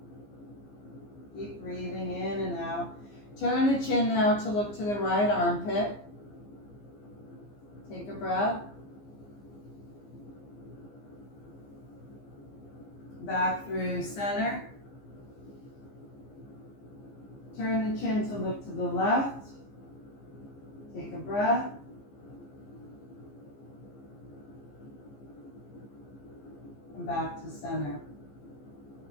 Keep breathing in and out. Turn the chin now to look to the right armpit. Take a breath. Back through center. Turn the chin to look to the left. Take a breath. And back to center.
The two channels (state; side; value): late; right; 15 ms